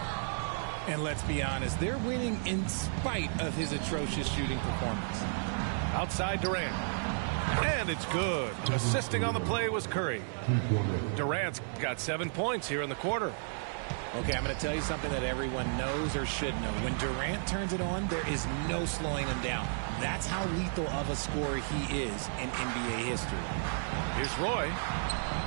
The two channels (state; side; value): silent; left; digital silence